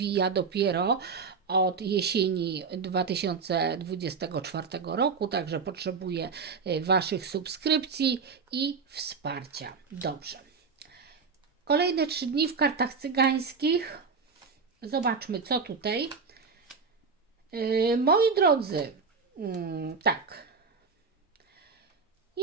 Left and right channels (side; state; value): left; quieter; 5.1 dB